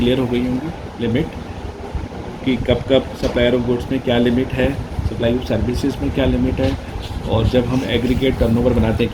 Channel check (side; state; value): both; identical; correlation 1.00